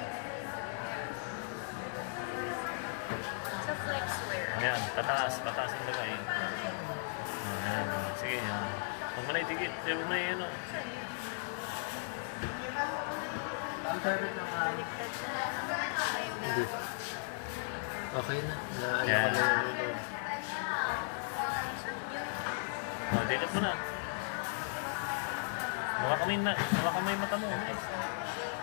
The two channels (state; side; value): silent; right; digital silence